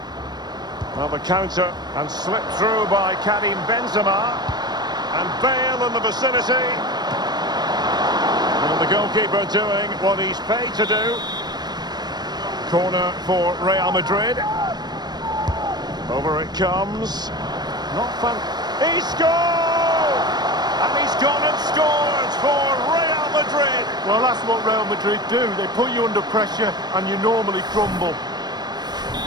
Well, the counter and slipped through by Karim Benzema. And Bale in the vicinity. And the goalkeeper doing what he's paid to do. Corner for Real Madrid. Over it comes. Not fun. He scored! And he's gone and scored for Real Madrid. Well, that's what Real Madrid do. They put you under pressure and you normally crumble.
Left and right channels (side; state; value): left; late; 0.20 ms